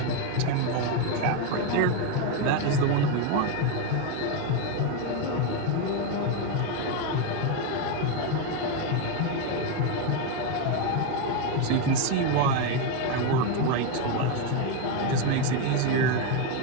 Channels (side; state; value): both; different; correlation 0.02